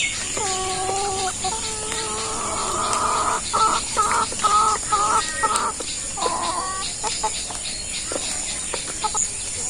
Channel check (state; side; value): identical; both; correlation 1.00